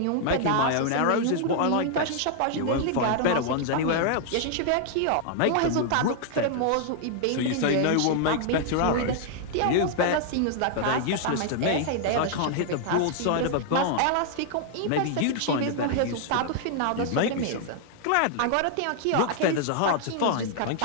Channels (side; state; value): both; different; correlation -0.01